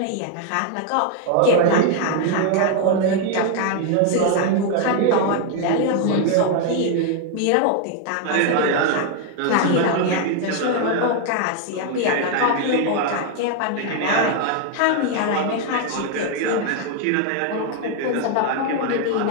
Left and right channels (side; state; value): both; different; correlation 0.00